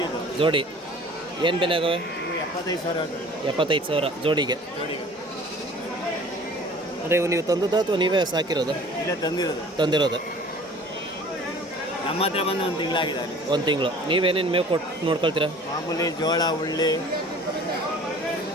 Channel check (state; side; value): normal; both; correlation 0.47